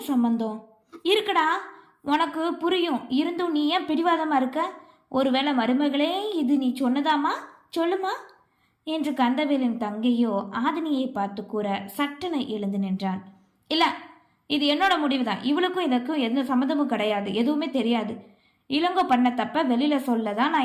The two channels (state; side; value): identical; both; correlation 1.00